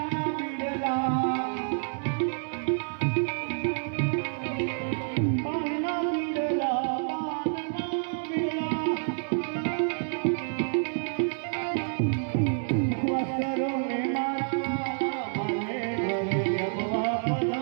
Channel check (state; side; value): silent; left; digital silence